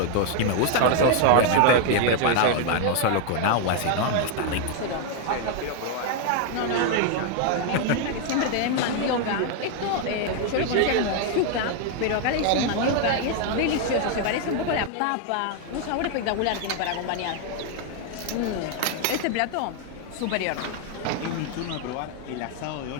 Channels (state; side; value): different; both; correlation 0.00